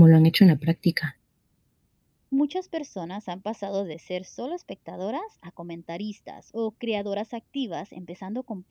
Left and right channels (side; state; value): both; identical; correlation 1.00